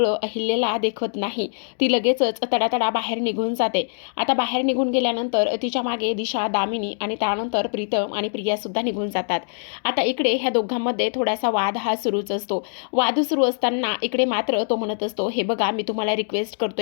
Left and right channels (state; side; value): silent; right; digital silence